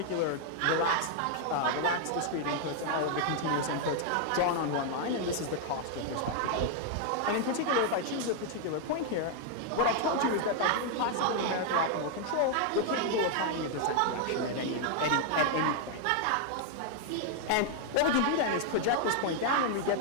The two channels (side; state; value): both; different; correlation 0.00